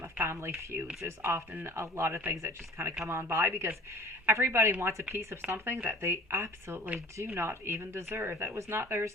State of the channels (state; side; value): normal; both; correlation 0.48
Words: family feuds. There's often a lot of things that just kind of come on by because everybody wants a piece of something that they absolutely do not even deserve. That was not theirs